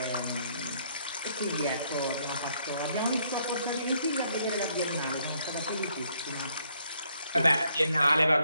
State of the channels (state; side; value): inverted; both; correlation -0.70